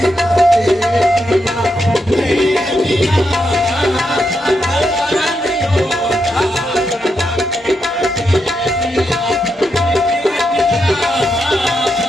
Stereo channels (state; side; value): normal; both; correlation 0.83